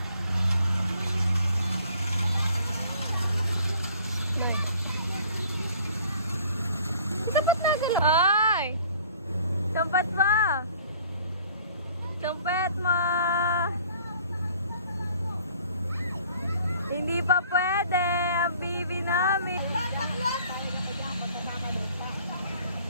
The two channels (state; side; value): inverted; both; correlation -0.54